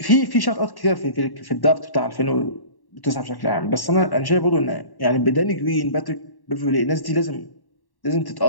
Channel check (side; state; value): right; late; 1.1 ms